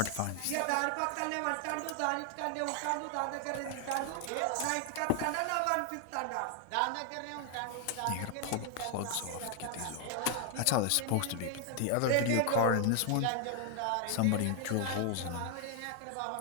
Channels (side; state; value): both; different; correlation 0.00